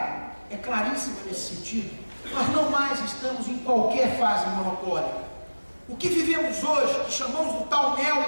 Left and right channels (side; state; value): both; inverted; correlation -1.00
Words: é claríssima nesse sentido, nós não mais estamos em qualquer fase monopólica. O que vivemos hoje, que chamamos do tal